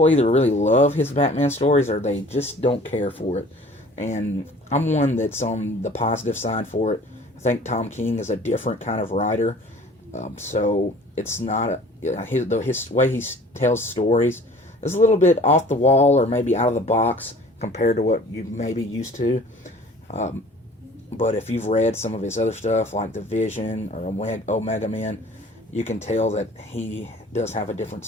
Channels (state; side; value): normal; both; correlation 0.48